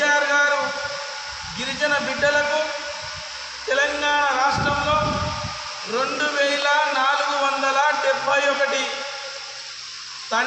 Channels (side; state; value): both; identical; correlation 1.00